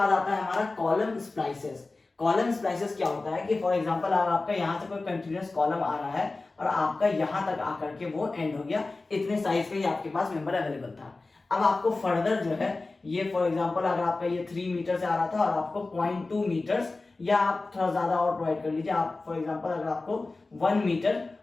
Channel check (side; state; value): right; quieter; 3.4 dB